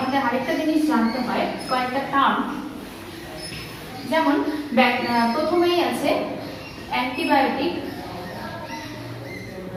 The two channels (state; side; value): identical; both; correlation 1.00